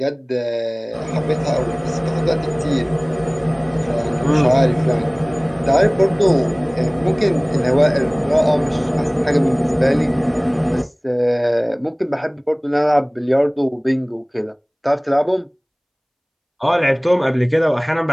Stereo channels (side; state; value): both; identical; correlation 1.00